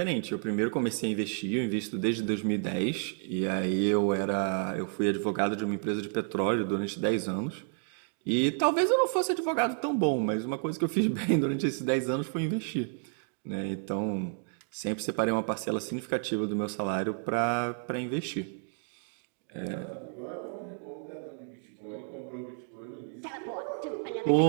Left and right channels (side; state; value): left; silent; 57 dB below the other